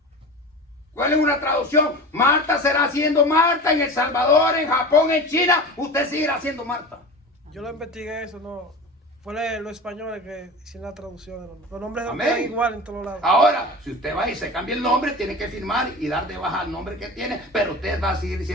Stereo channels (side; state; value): both; normal; correlation 0.32